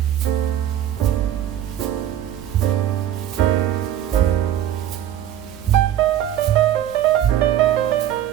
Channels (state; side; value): quieter; left; 11.5 dB